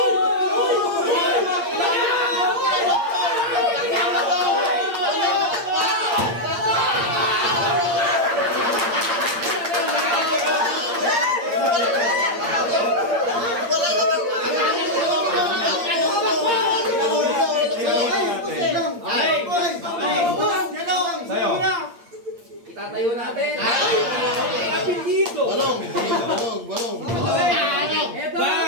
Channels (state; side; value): late; left; 8.7 ms